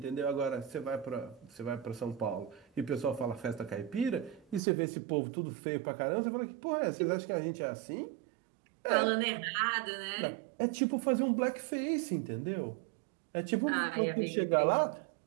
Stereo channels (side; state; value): left; drops out; at 4.6 s